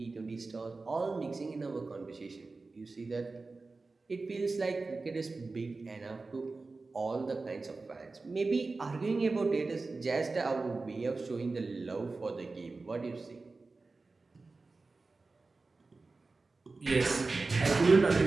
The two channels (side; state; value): left; quieter; 3.7 dB